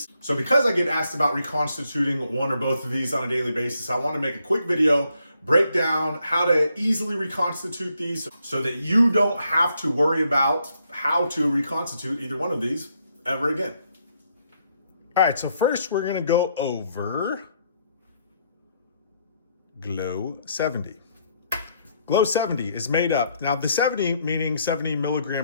So because I get asked about reconstituting one or both of these on a daily basis, I want to make a quick video, break down how to easily reconstitute these so that you don't have to worry about how to reconstitute either one of these ever again. All right, so first we're gonna go over Glow 70. Glow 70 is made up, now the 70 meaning 70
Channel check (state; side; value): inverted; both; correlation -0.73